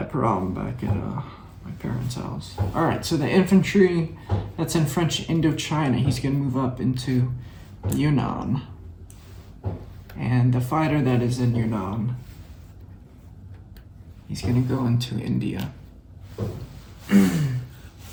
problem back at my parents' house. Alright, so the infantry that's in French Indochina, he's gonna move up into Yunnan. And the fighter that is in Yunnan, he's gonna go into India.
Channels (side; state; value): both; identical; correlation 1.00